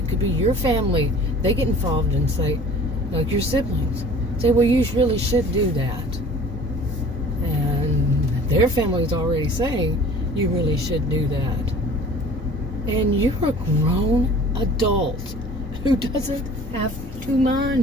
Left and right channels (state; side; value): normal; both; correlation 0.46